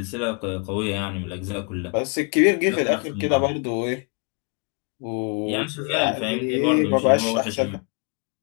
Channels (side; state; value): right; quieter; 36.4 dB